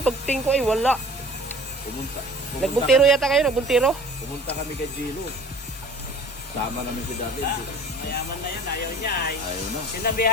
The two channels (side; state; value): both; normal; correlation 0.46